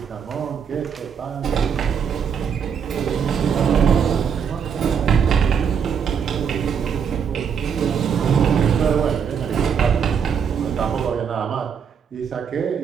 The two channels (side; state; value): left; quieter; 7.2 dB